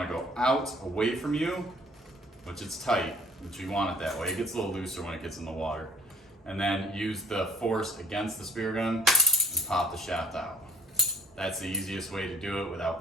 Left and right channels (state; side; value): normal; both; correlation 0.54